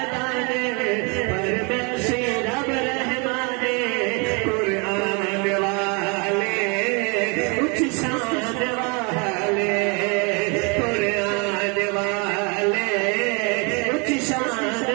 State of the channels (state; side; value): quieter; left; 31.9 dB